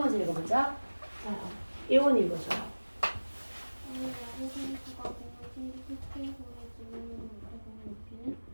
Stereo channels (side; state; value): both; inverted; correlation -1.00